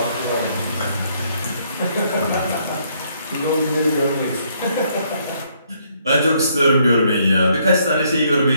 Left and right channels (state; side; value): inverted; both; correlation -0.70